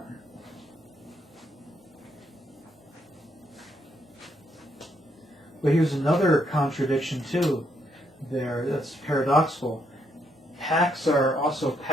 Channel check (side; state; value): both; normal; correlation 0.74